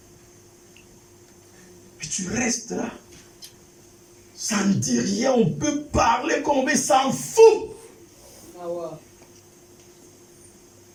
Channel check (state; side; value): identical; both; correlation 1.00